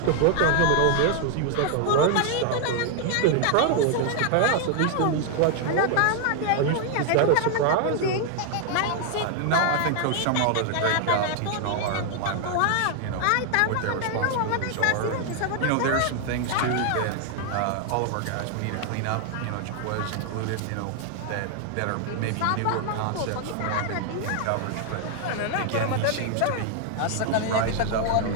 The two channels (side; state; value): both; different; correlation 0.00